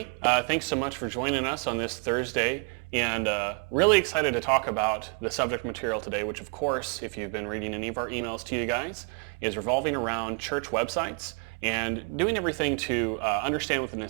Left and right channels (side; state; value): left; quieter; 38.1 dB